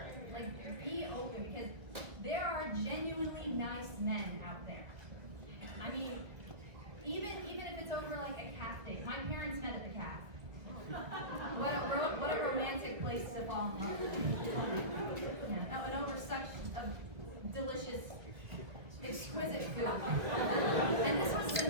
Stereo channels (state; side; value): late; left; 1.7 ms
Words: Like, be open, because there are genuinely nice men out there. I mean, even if it's over like a calf date. My parents met at the calf. What a romantic place to fall in love. Yeah, and over such a delicious, exquisite food. And this was the